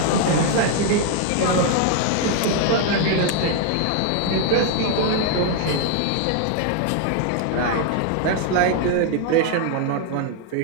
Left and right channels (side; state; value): both; different; correlation 0.00